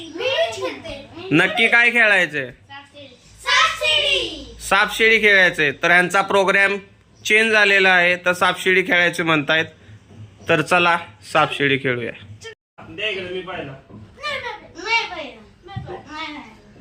नक्की काय खेळायचंय? सापशिडी खेळायचंय। तर ह्यांचा प्रोग्राम चेंज झालेला आहे, तर सापशिडी खेळायचे म्हणतायत। तर चला सापशिडी खेळूया। मी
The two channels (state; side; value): identical; both; correlation 1.00